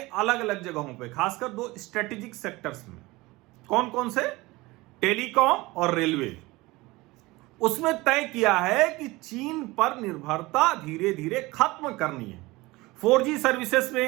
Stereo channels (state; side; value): quieter; left; 21.2 dB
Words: अलग जगहों पे, खासकर 2 स्ट्रेटेजिक सेक्टर्स में, कौन कौन से, टेलीकॉम और रेलवे, उसमें तय किया है कि चीन पर निर्भरता धीरे धीरे खत्म करनी है। 4G सर्विसेज